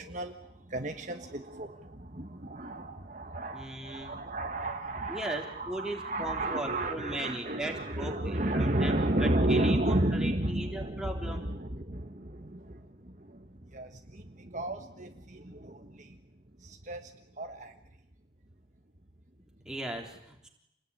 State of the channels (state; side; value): normal; both; correlation 0.60